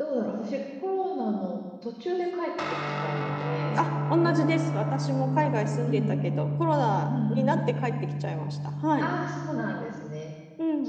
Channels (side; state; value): both; identical; correlation 1.00